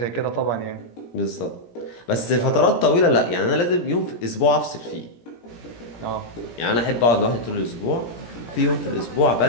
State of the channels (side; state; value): right; late; 17 ms